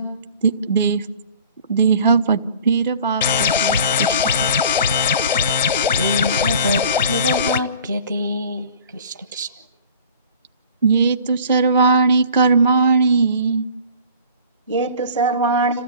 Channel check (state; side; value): inverted; both; correlation -0.47